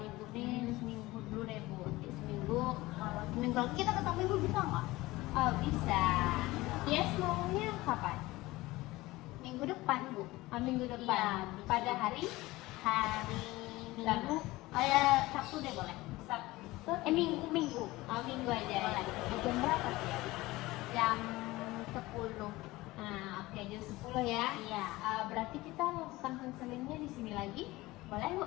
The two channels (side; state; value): right; quieter; 19.4 dB